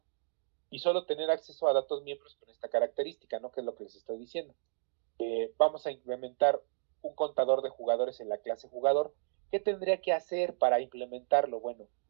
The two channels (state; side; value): silent; left; digital silence